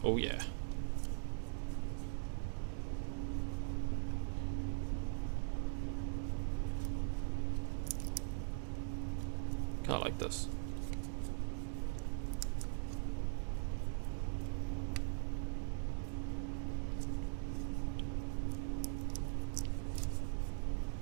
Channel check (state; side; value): silent; left; digital silence